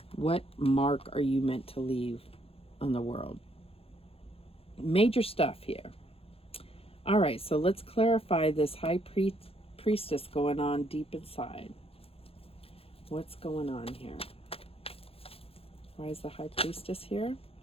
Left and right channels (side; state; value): right; late; 0.28 ms